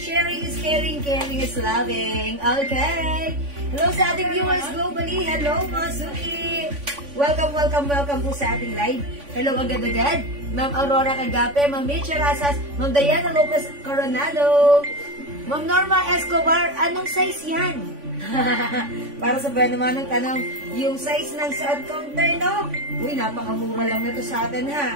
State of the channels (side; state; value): left; late; 3.5 ms